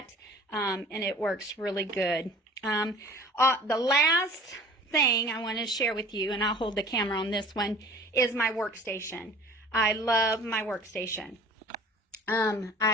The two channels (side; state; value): both; normal; correlation 0.45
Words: and it works really good. The last thing I want to share with you, and I'll hold the camera on this one, is my workstation. I love my workstation.